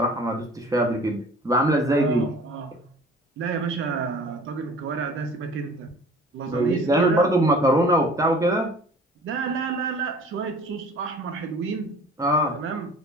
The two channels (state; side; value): normal; both; correlation 0.48